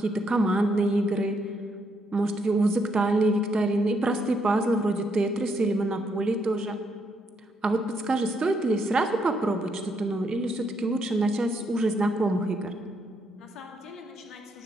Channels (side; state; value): both; normal; correlation 0.75